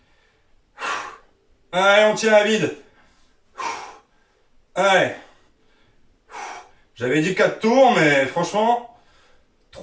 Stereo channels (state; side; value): identical; both; correlation 1.00